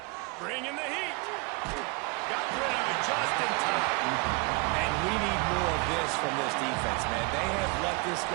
Bringing the heat. Got rid of it just in time. And we need more of this from this defense, man. They have let this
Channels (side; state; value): left; quieter; 28.3 dB